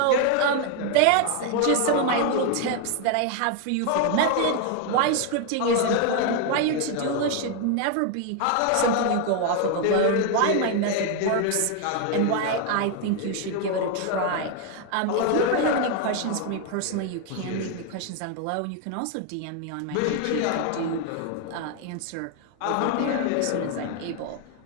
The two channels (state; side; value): different; both; correlation 0.01